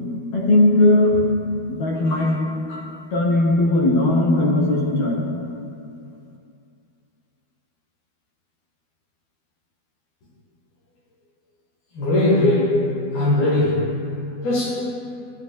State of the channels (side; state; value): right; late; 12 ms